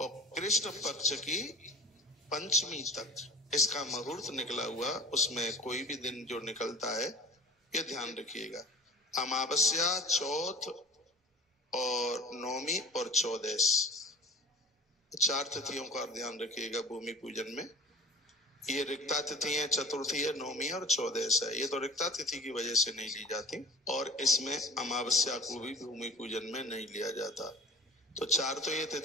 कृष्ण पक्ष की पंचमी तक इसका मुहूर्त निकला हुआ, उसमें कोई भी दिन जो निकलता है ये ध्यान रखिएगा। अमावस्या, चौथ और नौमी और चौदस, चार तिथियों का ध्यान रखिएगा भूमि पूजन में। ये रिक्ता तिथि है, चतुर्थी है, नौमी और चौदस है। ये तो रिक्ता तिथि की वजह से नहीं ली जाती, और इसमें अमावस्या को भी भूमि पूजन में नहीं लिया जाता। तो चार तो ये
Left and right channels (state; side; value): normal; both; correlation 0.40